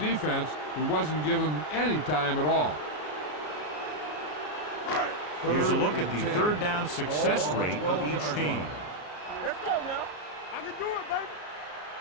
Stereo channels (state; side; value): late; right; 33 ms